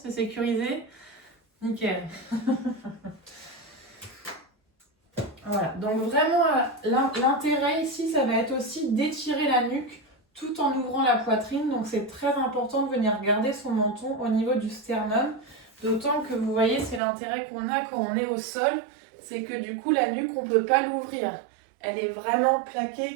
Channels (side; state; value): left; drops out; at 17.0 s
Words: sécurisé? Nickel. Voilà, donc vraiment l'intérêt ici, ça va être aussi d'étirer la nuque tout en ouvrant la poitrine. Donc c'est très important de venir garder son menton au niveau du sternum. D'autant que vous voyez, c'est l'intérêt qu'on a quand on est au sol, c'est que du coup la nuque, on ne peut pas l'ouvrir. Elle est vraiment